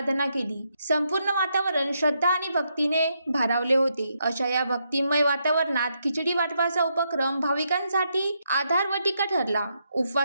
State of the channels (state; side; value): inverted; both; correlation -0.79